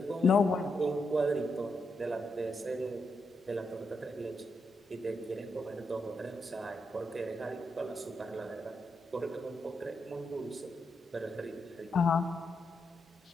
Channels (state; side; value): normal; both; correlation 0.83